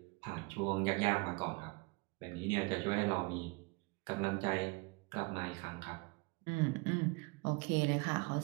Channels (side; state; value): left; quieter; 28.0 dB